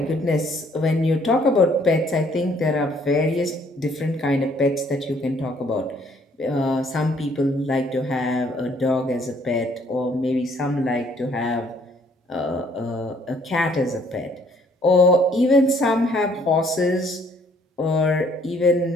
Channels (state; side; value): normal; both; correlation 0.62